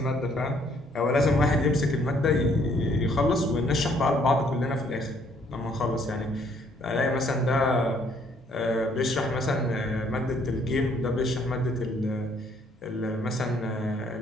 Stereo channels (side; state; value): both; normal; correlation 0.65